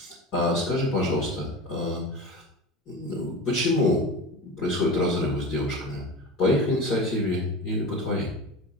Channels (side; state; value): both; normal; correlation 0.30